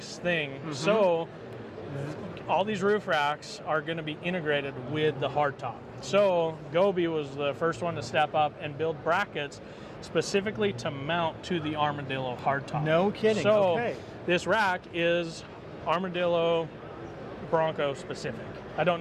thing. So all these roof racks are going to be integrated with the hardtop. So Gobi was the first one to step up and build brackets specifically to mount to the Armadillo hardtop. No kidding. So this rack is Armadillo Bronco specific. I don't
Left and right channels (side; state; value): both; identical; correlation 1.00